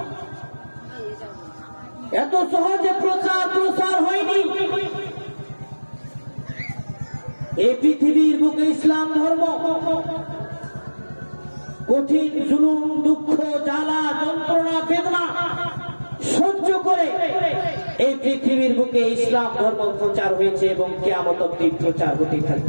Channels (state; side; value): inverted; both; correlation -1.00